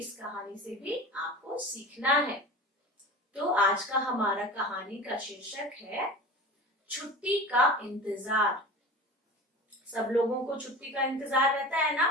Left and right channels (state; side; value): normal; both; correlation 0.34